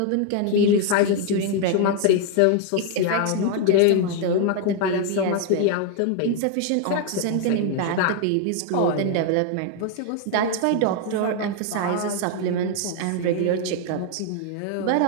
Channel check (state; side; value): different; both; correlation 0.00